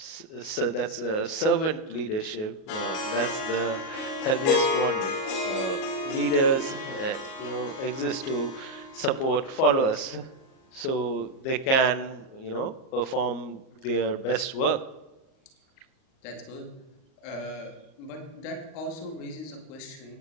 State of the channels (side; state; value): right; late; 38 ms